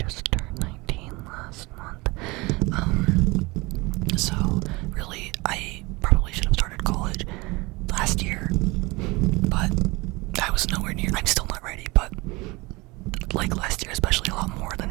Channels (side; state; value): left; quieter; 23.9 dB